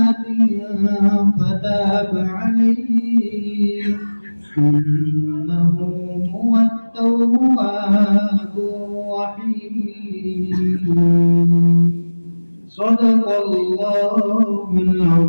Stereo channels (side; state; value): both; inverted; correlation -1.00